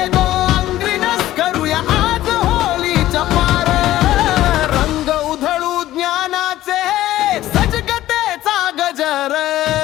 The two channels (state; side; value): quieter; right; 14.5 dB